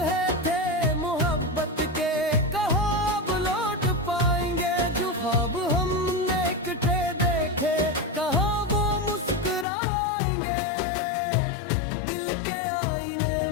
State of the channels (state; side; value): drops out; right; at 9.7 s